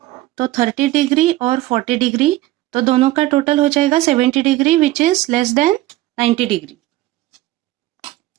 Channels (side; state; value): left; quieter; 16.8 dB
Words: तो 30 डिग्री और 40 डिग्री, तो दोनों का टोटल हो जाएगा 70 degree which is less than 90 degree.